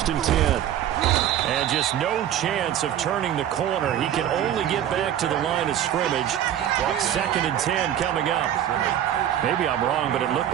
and 10. And just no chance of turning the corner. He can only get back to the line of scrimmage. 2nd and 10 coming up. Maybe I'm wrong, but it looked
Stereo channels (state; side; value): quieter; left; 10.9 dB